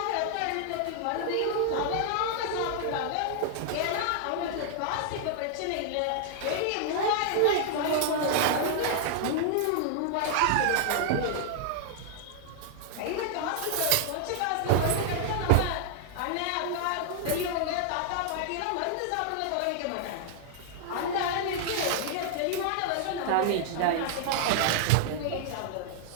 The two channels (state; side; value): different; both; correlation -0.01